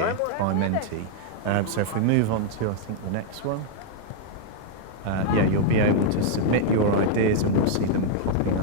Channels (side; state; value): both; different; correlation -0.01